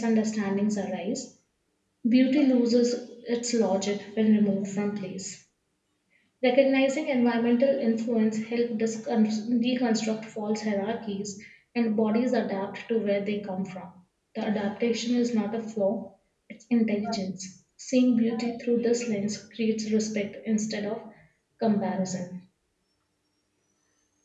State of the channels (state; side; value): identical; both; correlation 1.00